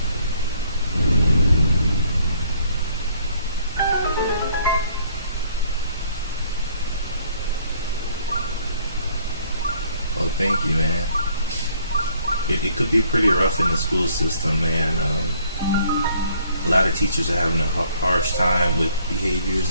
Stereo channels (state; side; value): inverted; both; correlation -0.63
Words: Oh, thank you, man. It could be pretty rough in the school system, man. A lot of teachers are having a harsh time with behaviors